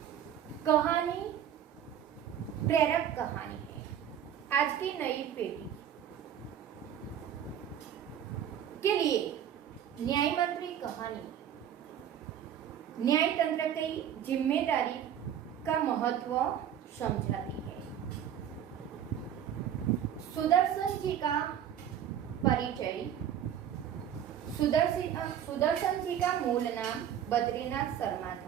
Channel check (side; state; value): left; quieter; 9.7 dB